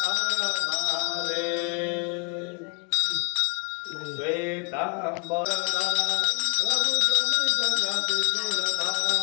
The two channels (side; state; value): right; quieter; 35.0 dB